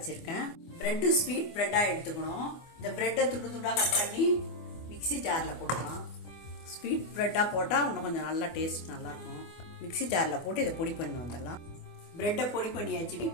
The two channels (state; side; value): late; right; 24 ms